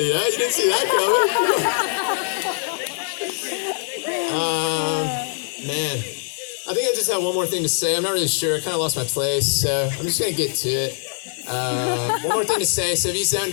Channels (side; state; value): right; silent; 64 dB below the other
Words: Yeah, you didn't see that coming. Man, I think I just have one more thing to say. I'm not really sure. I kind of lost my place, so I'm just gonna get to it. One more thing to say. So if you